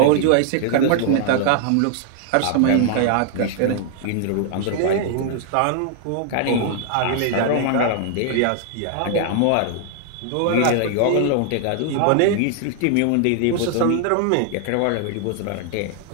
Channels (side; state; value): both; different; correlation 0.00